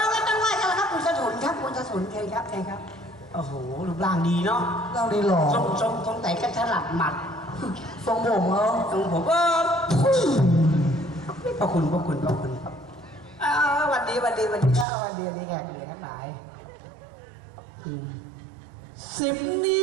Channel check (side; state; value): left; drops out; at 14.9 s